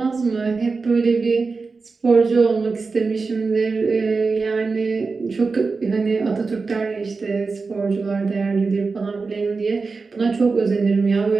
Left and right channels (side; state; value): left; quieter; 4.3 dB